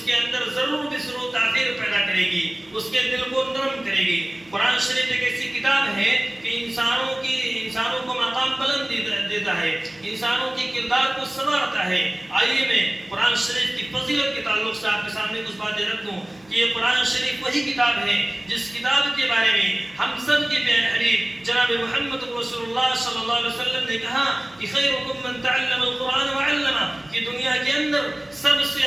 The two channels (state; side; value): noise; right; hum, 29 dB below the sound